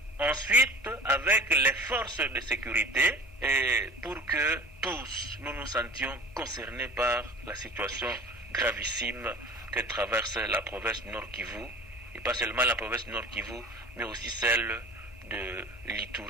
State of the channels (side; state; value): both; normal; correlation 0.41